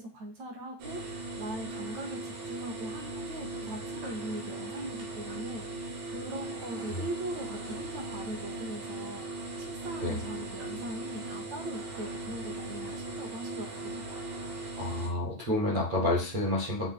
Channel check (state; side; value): late; left; 8.9 ms